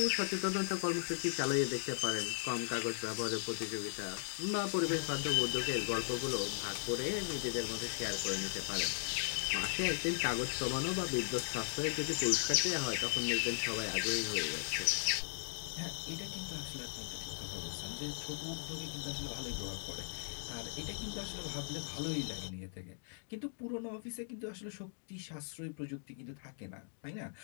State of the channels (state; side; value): silent; right; digital silence